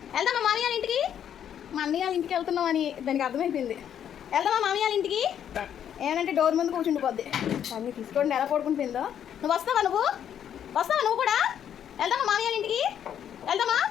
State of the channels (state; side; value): quieter; right; 9.4 dB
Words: వెళ్దామా మామయ్య వాళ్ళ ఇంటికి? మా అన్నయ్య వాళ్ళ ఇంటికి వెళ్తున్నాం అని దానికి అర్థమైపోయింది. వెళ్దామా మామయ్య వాళ్ళ ఇంటికి? ఏమంటే డోర్ ముందు కూర్చుండిపోద్ది. అన్నీ తీసుకోండి ఎలా పడుకుంటుందో. నువ్వు వస్తావా? నువ్వు కూడా వెళ్దామా మామయ్య వాళ్ళ ఇంటికి? వెళ్దామా?